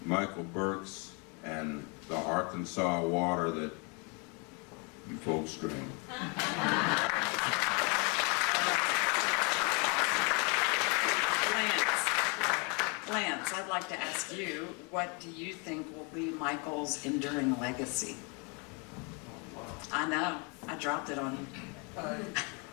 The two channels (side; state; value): right; quieter; 33.1 dB